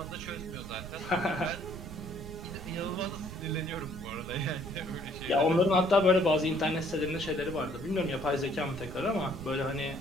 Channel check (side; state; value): right; noise; rumble, 10 dB below the sound